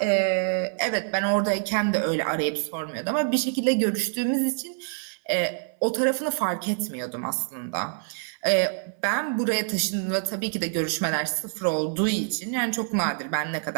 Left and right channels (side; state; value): left; silent; 60 dB below the other